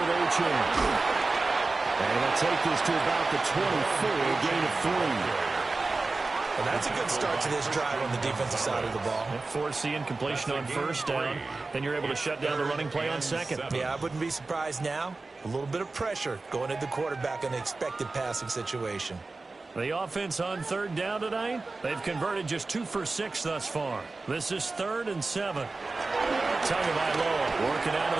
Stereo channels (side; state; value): left; quieter; 3.6 dB